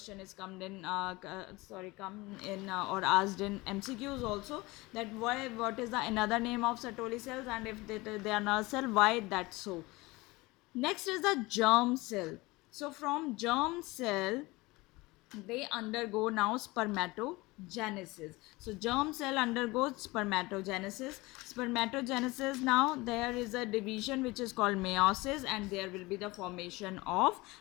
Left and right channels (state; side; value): quieter; right; 22.2 dB